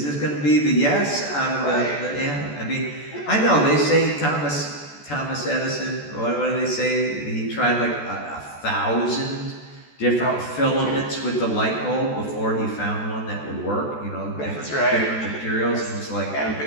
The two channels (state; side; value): late; right; 14 ms